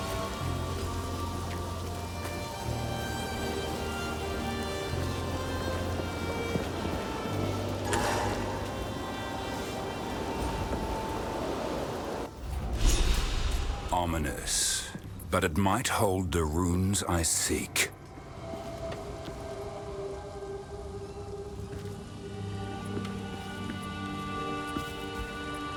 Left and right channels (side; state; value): both; identical; correlation 1.00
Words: Ominous, but it might hold the runes I seek.